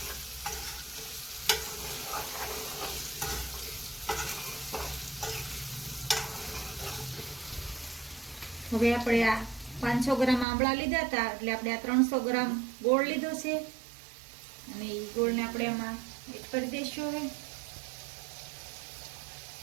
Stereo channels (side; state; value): left; drops out; at 10.5 s